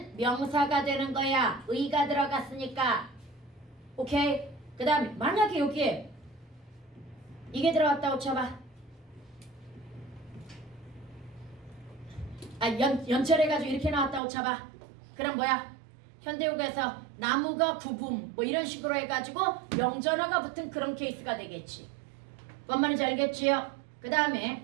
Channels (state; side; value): drops out; left; at 14.2 s